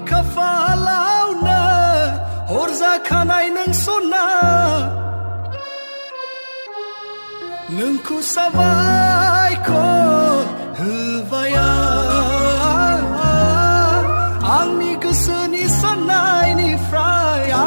खाफालावनो हरजाखानाय नों सना नोंखौ साबायखर होबाय आंनि गोसोनि साननायनिफ्राय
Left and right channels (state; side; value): inverted; both; correlation -1.00